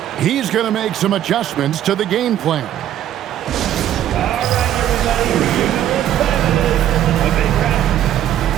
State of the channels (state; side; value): quieter; left; 11.5 dB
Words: He's going to make some adjustments to the game plan.